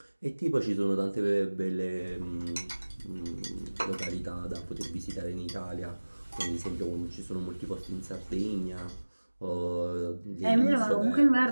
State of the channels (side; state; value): both; inverted; correlation -1.00